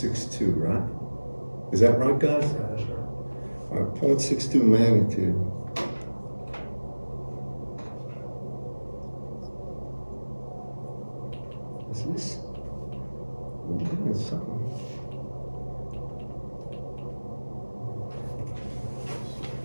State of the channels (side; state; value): both; inverted; correlation -1.00